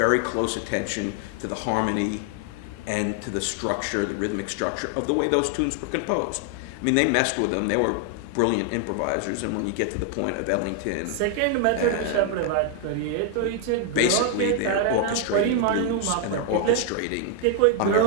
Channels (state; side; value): different; both; correlation 0.00